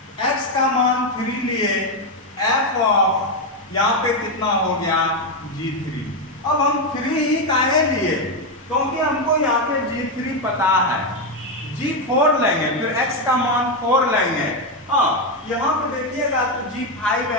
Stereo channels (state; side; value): normal; both; correlation 0.07